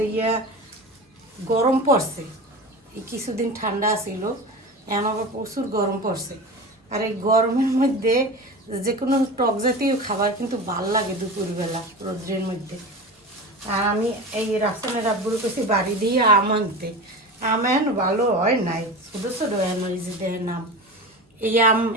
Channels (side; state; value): both; normal; correlation 0.30